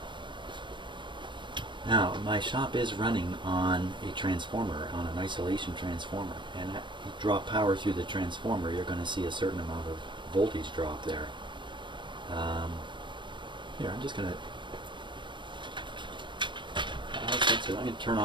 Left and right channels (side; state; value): left; late; 0.23 ms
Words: Now, my shop is running on a transformer, on an isolation transformer, and if you draw power through the transformer, you're going to see a certain amount of voltage drop there. Here, I'm just going to I'm going to turn